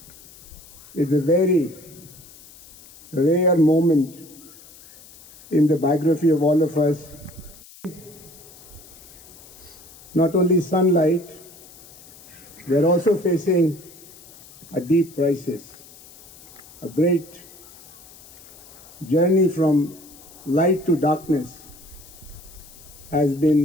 it's a very rare moment in the biography of all of us. Not only sunlight, we are also facing a deep crisis, a great journey from light to darkness has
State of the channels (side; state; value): left; noise; hiss, 21 dB below the sound